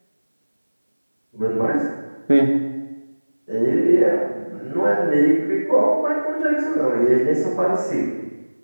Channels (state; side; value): inverted; both; correlation -1.00